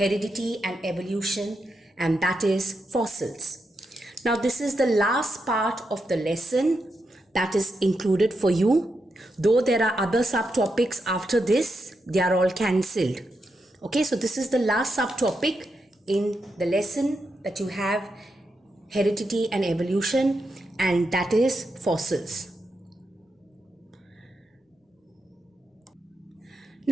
and evolution, and that is fossils. Now, this is the last part of the lesson that is included for you. Though there are other subtopics after this, they are all cancelled. Okay, so this is the last subtopic in the lesson that you have, heredity and evolution, and that is fossils.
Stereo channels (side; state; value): both; normal; correlation 0.85